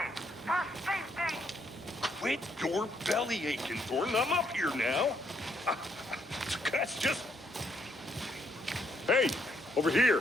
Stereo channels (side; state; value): both; normal; correlation 0.73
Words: Quit your belly aching, Thornton. I'm up here now. That's just... Hey, over